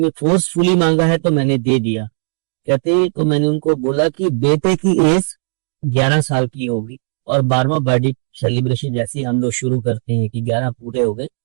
फोर्सफुली मांगा है तो मैंने दे दिया। कहते तो मैंने उनको बोला कि बेटे की एज 11 साल की होगी और 12वां बर्थडे सेलिब्रेशन जैसे हम लोग शुरू करते हैं कि 11 पूरे हो गए,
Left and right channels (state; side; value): silent; left; 68 dB below the other